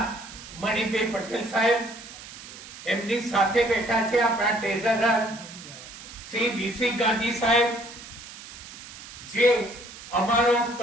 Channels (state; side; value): noise; right; hiss, 15 dB below the sound